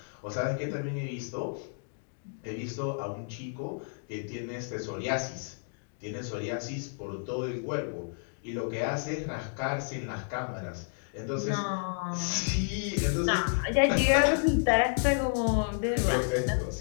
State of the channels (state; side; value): silent; right; digital silence